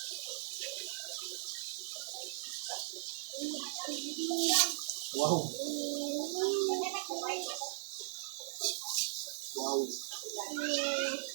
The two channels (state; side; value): silent; left; digital silence